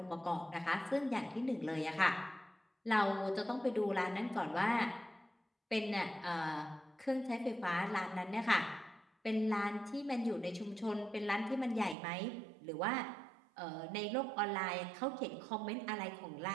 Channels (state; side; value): drops out; left; at 12.0 s